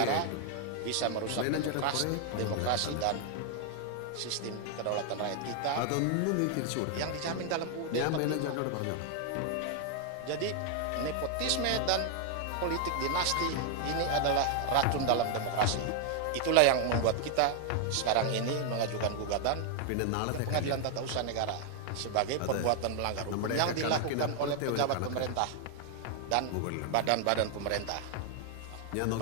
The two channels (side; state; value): both; different; correlation 0.00